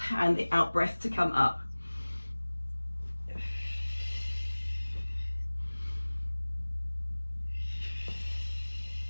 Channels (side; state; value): both; inverted; correlation -1.00